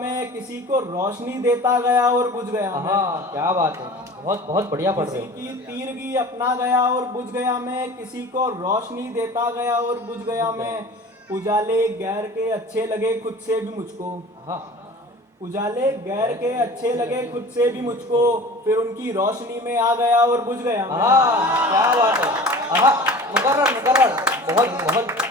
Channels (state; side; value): normal; both; correlation 0.40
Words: किसी को रोशनी देता गया और बुझ गया मैं। आहा, क्या बात है, बहुत बहुत बढ़िया पढ़ रहे किसी हो। की तीरगी अपना गया और बुझ गया मैं, किसी को रोशनी देता गया और बुझ गया मैं, उजाले गैर के अच्छे लगे खुद से भी मुझको, आहा, उजाले गैर के अच्छे लगे खुद से भी मुझको, फिर उनकी रोशनी में आ गया और बुझ गया मैं। आहा, क्या बात है। आहा, मुकर्रर मुकर्रर, बहुत बहुत